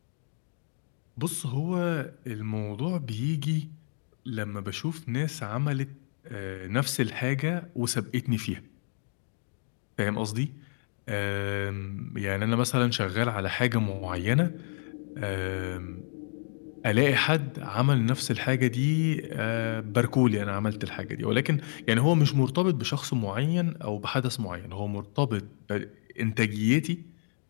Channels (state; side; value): silent; right; digital silence